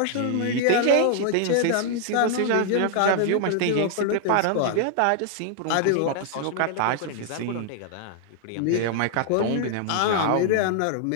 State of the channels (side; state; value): both; different; correlation 0.00